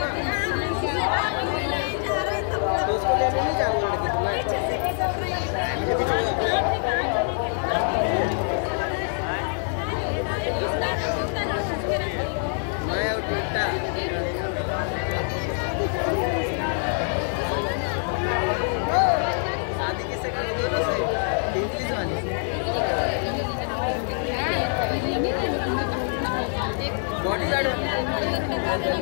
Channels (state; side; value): silent; right; 61 dB below the other